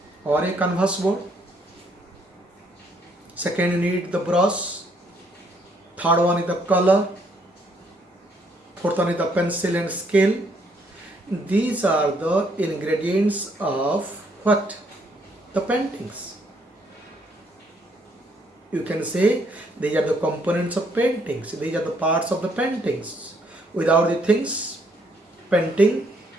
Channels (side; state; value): both; normal; correlation 0.69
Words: or a canvas board. Second, you need the brush. Third one is the color. Fourth one is the pencil and scale. These are the ingredients of what? The paintings. You can say these are the components of paintings. These are the parts of the paintings. Without the things, painting